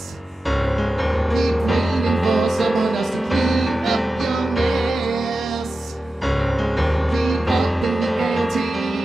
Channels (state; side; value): normal; both; correlation 0.93